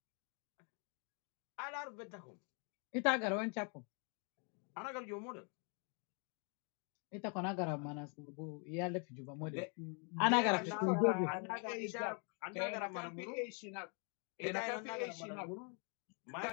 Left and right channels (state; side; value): quieter; right; 38.5 dB